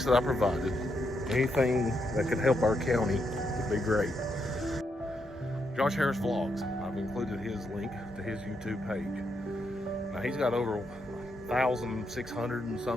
that I provided. Anything that could help our county would be great. Josh Harris Vlogs, I've included his link to his YouTube page. Now he's got over 1,600 and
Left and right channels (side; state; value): both; normal; correlation 0.80